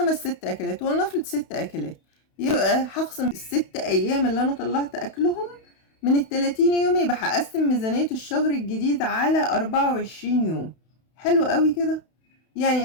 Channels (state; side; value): late; right; 31 ms